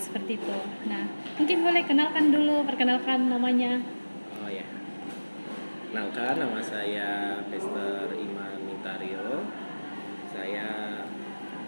itu. Nah, mungkin boleh perkenalkan namanya. Oh ya. Kenalkan, nama saya Pastor Iman Mintario. Saya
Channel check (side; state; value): both; inverted; correlation -1.00